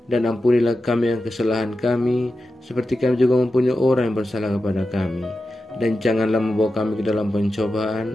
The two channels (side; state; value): both; normal; correlation 0.91